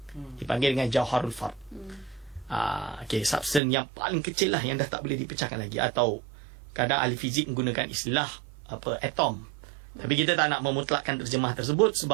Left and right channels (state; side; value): drops out; left; at 3.6 s